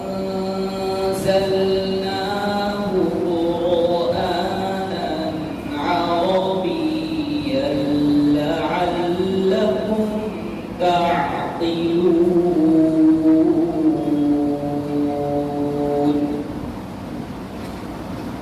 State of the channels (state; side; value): identical; both; correlation 1.00